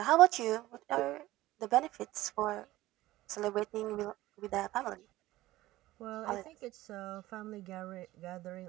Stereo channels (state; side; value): quieter; left; 16.9 dB